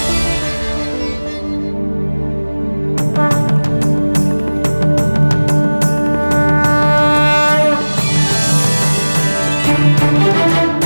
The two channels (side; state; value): both; inverted; correlation -1.00